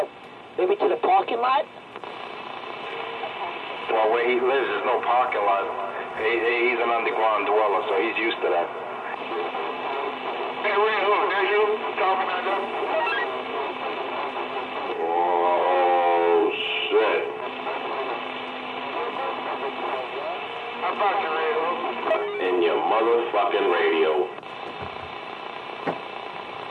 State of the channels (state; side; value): identical; both; correlation 1.00